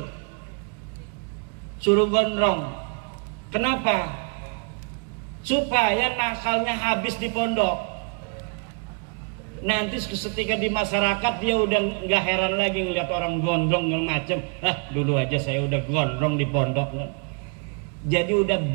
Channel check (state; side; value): quieter; left; 36.8 dB